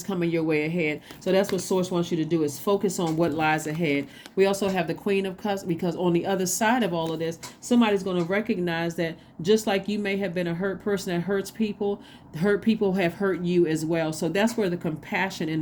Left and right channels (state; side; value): identical; both; correlation 1.00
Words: coming your way ahead. So that's what Source wants you to do, is focus on what lies ahead. We also have the Queen of Cups, because on the other side of all of this, somebody's going to recognize that just like you may have been a hurt person that hurts people, hurt people have hurt you as well. So that's where the compassion and